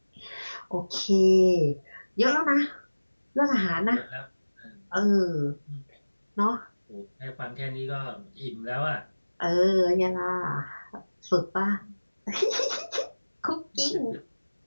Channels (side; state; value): both; inverted; correlation -1.00